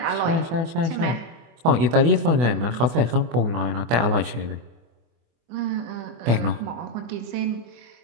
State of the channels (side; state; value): left; late; 24 ms